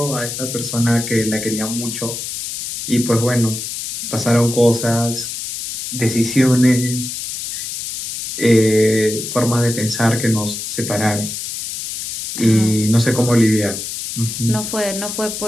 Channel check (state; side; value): noise; left; hiss, 6 dB below the sound